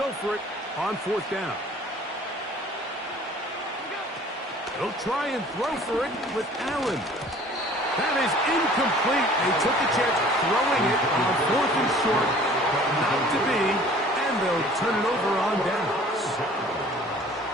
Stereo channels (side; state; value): both; normal; correlation 0.50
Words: for it on 4th down. They'll try and throw for it with Allen. That is incomplete. They took a chance throwing it on 4th and short, but not to be, and they'll turn it over on downs.